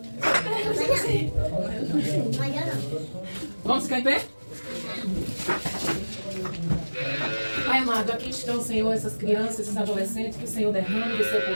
Vamos ficar em pé? Pai amado, aqui estão, Senhor, essas crianças, esses adolescentes, que o Senhor derrame do seu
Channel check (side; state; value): both; inverted; correlation -1.00